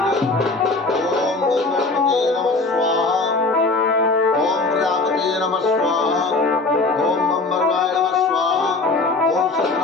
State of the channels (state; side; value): quieter; right; 3.5 dB